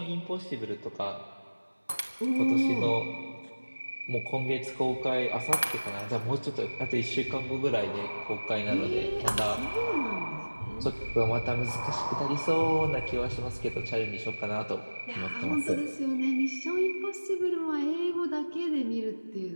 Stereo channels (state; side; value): inverted; both; correlation -1.00